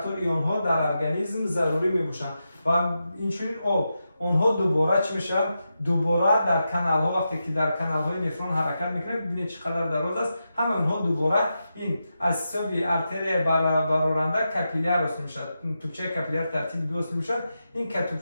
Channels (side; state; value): both; inverted; correlation -0.88